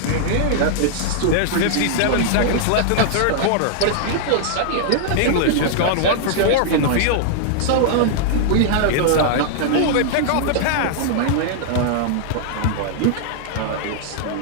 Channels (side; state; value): both; different; correlation -0.01